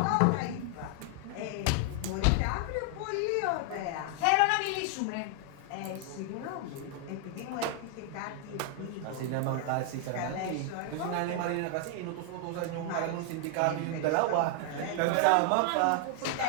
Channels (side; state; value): both; different; correlation 0.00